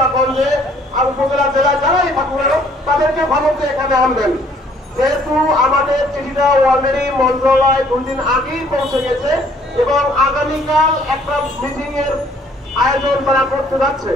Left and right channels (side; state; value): both; normal; correlation 0.61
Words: গঞ্জে আর উপজেলা জেলায় যারাই থাকুন তাদেরকে ভালোতে এখানে আনবেন। যেহেতু আমাদের চিঠিটা অলরেডি মন্ত্রণালয় 2 দিন আগেই পৌঁছে গেছে এবং আগামীকাল একটা মিটিং এর আয়োজন তারা করতে যাচ্ছে।